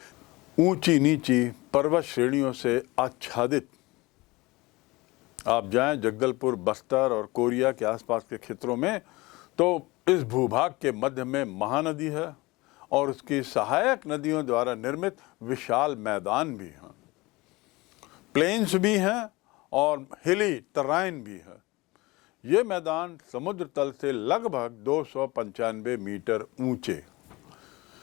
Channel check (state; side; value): quieter; right; 22.1 dB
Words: ऊंची नीची पर्वत श्रेणियों से आच्छादित आप जाएं जगदलपुर, बस्तर और कोरिया के आसपास के क्षेत्रों में, तो इस भूभाग के मध्य में महानदी है और उसकी सहायक नदियों द्वारा निर्मित विशाल मैदान भी हैं, प्लेन्स भी हैं और हिली टराइन भी है। ये मैदान समुद्र तल से लगभग 295 मीटर ऊंचे।